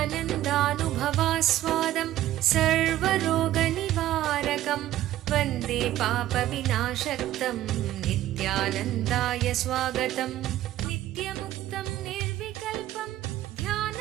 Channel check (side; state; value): left; quieter; 13.9 dB